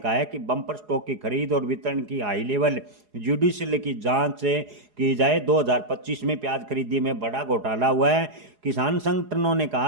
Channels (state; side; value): late; left; 4.8 ms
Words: है कि बम्पर स्टॉक की खरीद और वितरण की हाई लेवल जुडिशियल की जांच की जाए। 2025 में प्याज खरीदी में बड़ा घोटाला हुआ है। किसान संगठनों ने